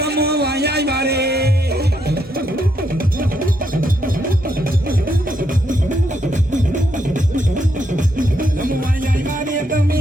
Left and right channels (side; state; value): both; normal; correlation 0.76